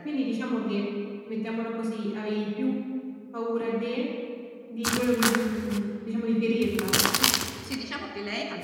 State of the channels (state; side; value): identical; both; correlation 1.00